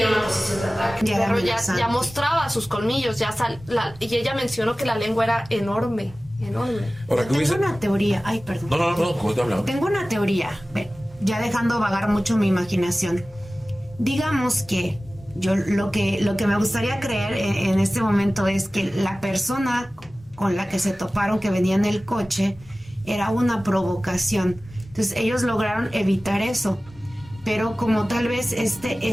una posición de ataque. El Ya perro era amenazante. ya mostraba sus colmillos, y ella mencionó que la lengua era enorme, enorme. Ahora, ¿qué Tengo hubiese? una teoría. Ay, perdón. No, ¿cómo te hablaba? Tengo una teoría, ya dejando vagar mucho mi imaginación. Digamos que yo lo que me gustaría creer en este momento es que la persona con la que se toparon, que venía en el coche, era una provocación. Entonces ellos lograron evitar eso. Pero como tal vez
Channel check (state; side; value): normal; both; correlation 0.97